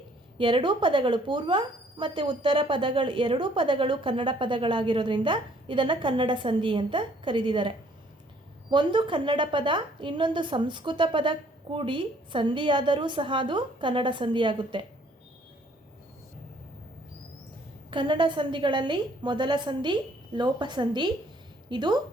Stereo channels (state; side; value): normal; both; correlation 0.61